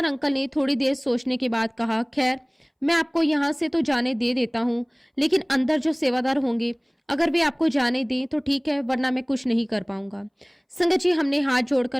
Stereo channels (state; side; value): identical; both; correlation 1.00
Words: अंकल ने थोड़ी देर सोचने के बाद कहा, खैर मैं आपको यहाँ से तो जाने दे देता हूँ, लेकिन अंदर जो सेवादार होंगे अगर वे आपको जाने दें तो ठीक है, वरना मैं कुछ नहीं कर पाऊंगा। संगत जी हमने हाथ जोड़कर